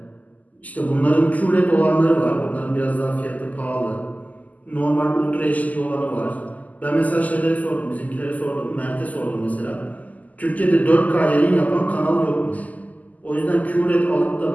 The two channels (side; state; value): right; late; 0.077 ms